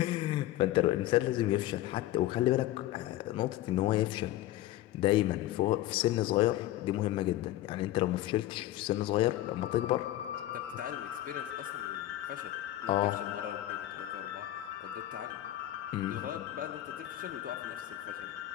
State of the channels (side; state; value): right; quieter; 14.8 dB